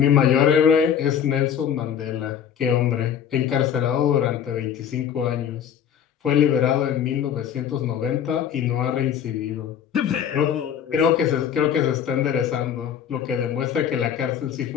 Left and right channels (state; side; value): quieter; right; 8.7 dB